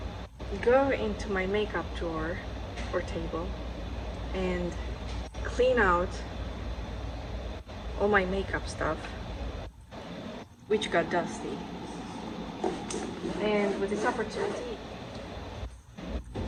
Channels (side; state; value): both; identical; correlation 1.00